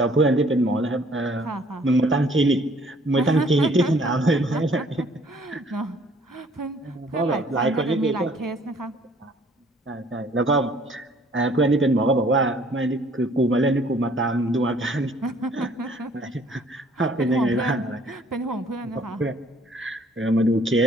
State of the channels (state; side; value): normal; both; correlation 0.58